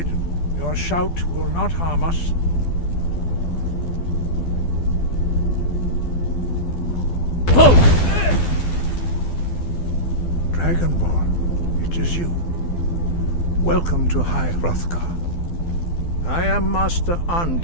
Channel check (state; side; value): late; right; 12 ms